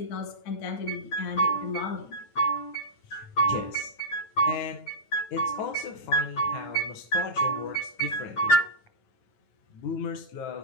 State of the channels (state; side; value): late; right; 9.2 ms